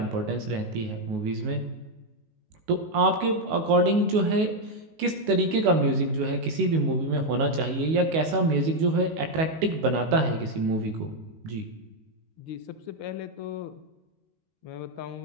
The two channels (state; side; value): late; left; 19 ms